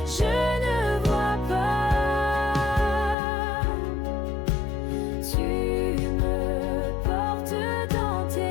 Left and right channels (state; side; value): drops out; right; at 3.2 s